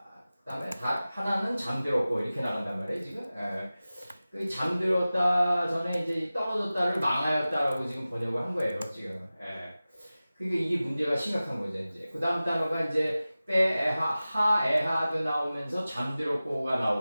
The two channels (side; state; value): both; inverted; correlation -0.96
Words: 그 다음에 하나는 잠들었고 이렇게 나간단 말이에요. 지금 그 잠들었다 전에 이제 떨어졌다를 망하였다라고 지금 번역을 한 거예요. 지금 그러니까 이게 문제가 심각한 거죠. 이제 그 다음 단어가 이제 하에하드 나오면서 잠들었고가